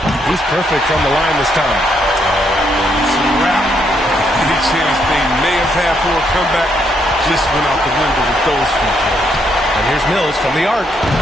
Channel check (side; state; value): both; normal; correlation 0.74